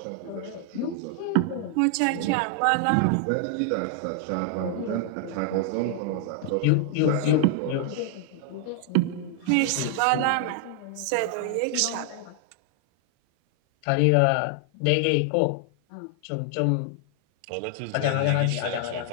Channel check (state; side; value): different; both; correlation 0.00